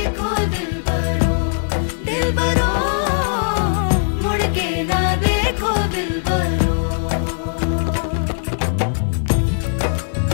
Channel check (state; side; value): silent; right; digital silence